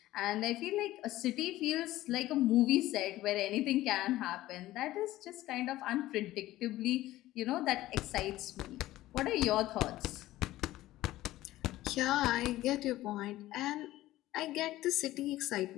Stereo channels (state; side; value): quieter; right; 15.9 dB